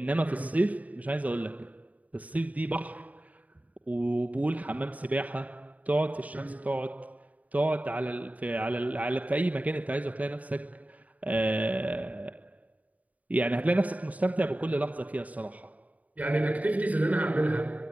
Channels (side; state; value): left; late; 0.072 ms